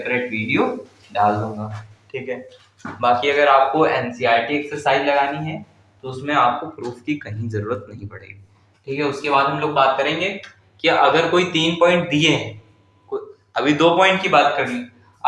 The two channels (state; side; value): identical; both; correlation 1.00